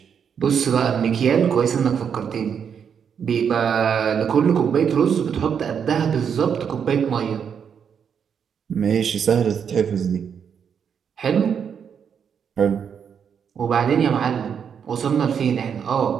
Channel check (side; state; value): left; quieter; 7.4 dB